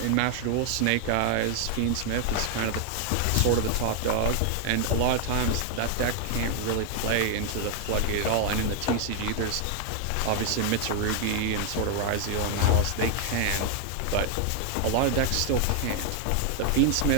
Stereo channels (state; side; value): different; both; correlation 0.00